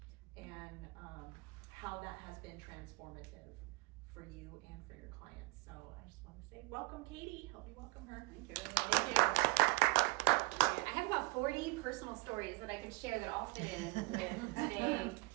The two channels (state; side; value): quieter; left; 24.9 dB